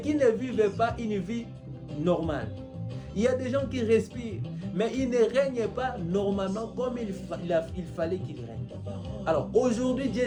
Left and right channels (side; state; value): both; identical; correlation 1.00